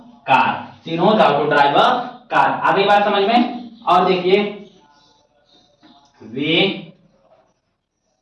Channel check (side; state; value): both; identical; correlation 1.00